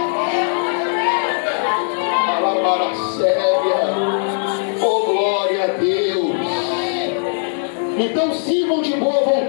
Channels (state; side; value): silent; right; digital silence